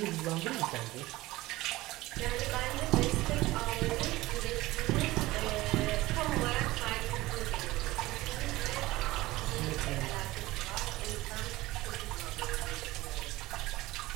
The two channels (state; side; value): quieter; left; 18.6 dB